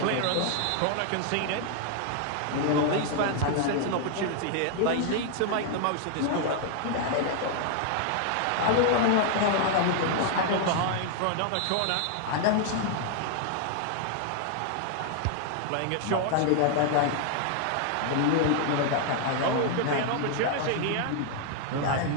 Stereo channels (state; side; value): different; both; correlation 0.00